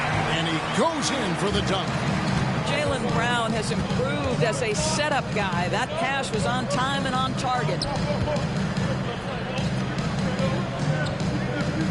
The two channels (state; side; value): identical; both; correlation 1.00